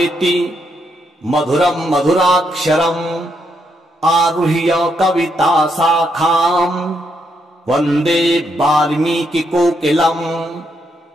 मधुरम् मधुराक्षरम् आरुह्य कविता शाखाम् वन्दे वाल्मीकिकोकिलम्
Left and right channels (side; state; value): both; normal; correlation 0.78